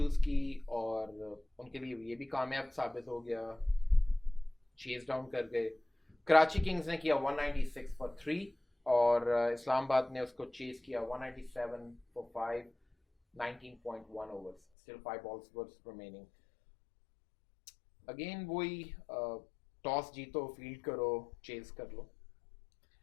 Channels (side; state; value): right; drops out; at 14.6 s